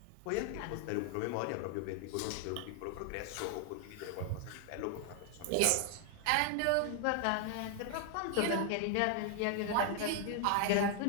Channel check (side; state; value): both; different; correlation 0.00